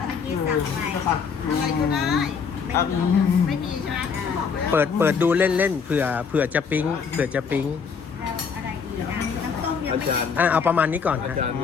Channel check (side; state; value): right; quieter; 6.0 dB